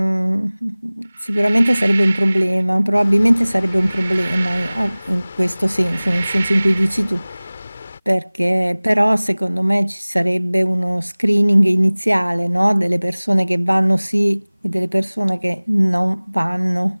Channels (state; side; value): inverted; both; correlation -1.00